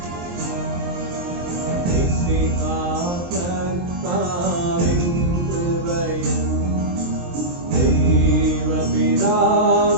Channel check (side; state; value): left; late; 23 ms